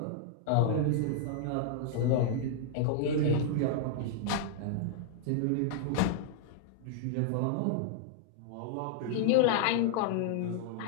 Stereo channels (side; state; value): both; different; correlation -0.01